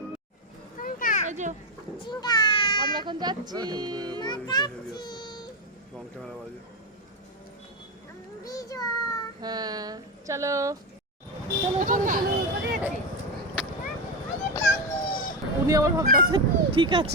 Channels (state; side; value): normal; both; correlation 0.11